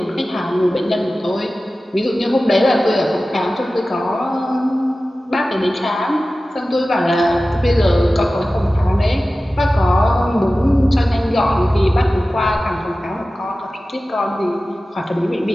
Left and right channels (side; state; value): both; normal; correlation 0.96